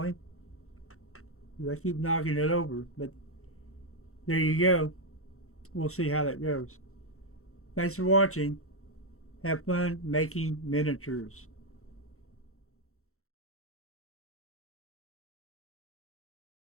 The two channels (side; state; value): right; late; 0.63 ms